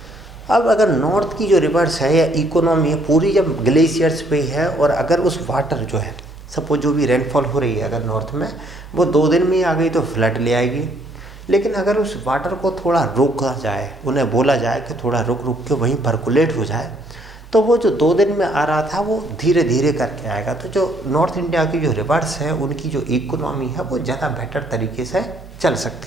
अब अगर नॉर्थ की जो रिवर्स है या इकोनॉमी है पूरी जब ग्लेशियर्स पे है, और अगर उस वाटर जो है सपोज जो भी रेनफॉल हो रही है अगर नॉर्थ में वो 2 दिन में ही आ गई तो फ्लड ले आएगी। लेकिन अगर उस वाटर को थोड़ा रोका जाए, उन्हें बोला जाए कि थोड़ा रुक रुक के वहीं पर्कुलेट हो जाए, तो वो जो 2 दिन में आ रहा था वो धीरे धीरे करके आएगा। तो जो नॉर्थ इंडिया की जो रिवर्स है उनकी जो इकोनॉमी है वो ज़्यादा बेटर तरीके से चल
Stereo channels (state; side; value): normal; both; correlation 0.66